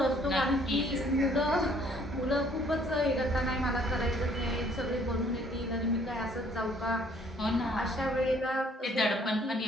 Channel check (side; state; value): both; normal; correlation 0.60